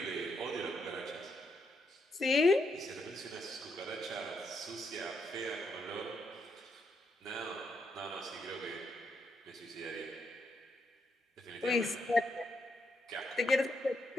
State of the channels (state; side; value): normal; both; correlation 0.78